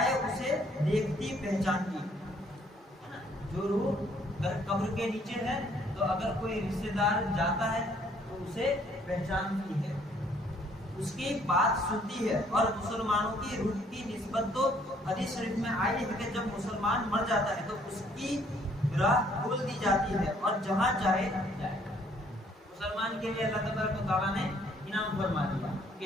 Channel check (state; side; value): normal; both; correlation 0.63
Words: اسے دیکھتی پہچانتی، ہے نا، جو روح اگر قبر کے نیچے ہے تو اگر کوئی رشتہ دار جاتا ہے تو اسے پہچانتی ہے، اس کی بات سنتی ہے۔ اور مسلمانوں کی روح کی نسبت تو حدیث شریف میں آئی ہے کہ جب مسلمان مر جاتا ہے تو اس کی راہ کھول دی جاتی ہے اور جہاں چاہے جائے۔ مسلمان کے لیے اللہ تبارک و تعالیٰ نے انعام فرما دیا